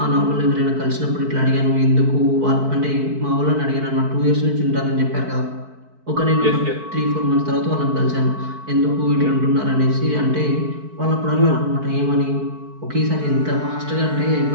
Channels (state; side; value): late; left; 4.6 ms